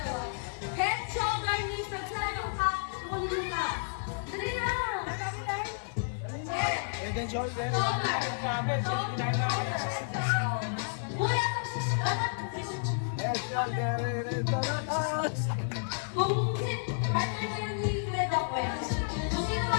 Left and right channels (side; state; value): right; silent; 57 dB below the other